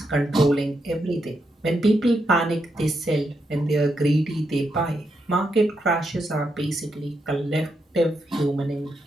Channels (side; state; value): both; normal; correlation 0.82